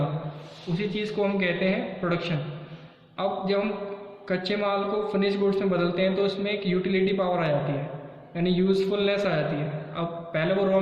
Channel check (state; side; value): identical; both; correlation 1.00